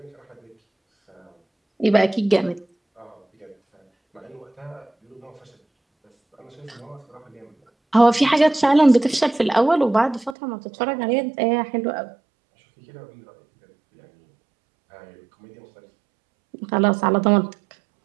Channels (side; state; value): left; drops out; at 10.4 s